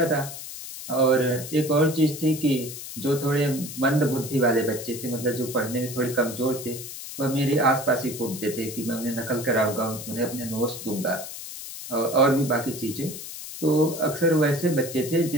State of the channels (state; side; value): noise; left; hiss, 10 dB below the sound